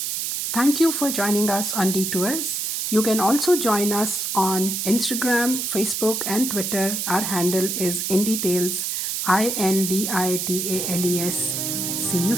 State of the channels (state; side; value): noise; right; hiss, 2 dB below the sound